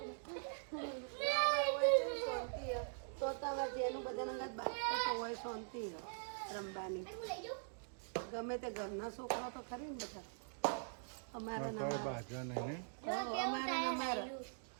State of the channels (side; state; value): left; silent; digital silence